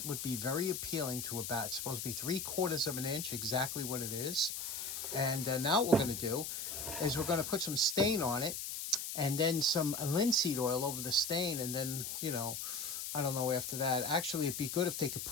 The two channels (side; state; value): left; noise; hiss, 5 dB below the sound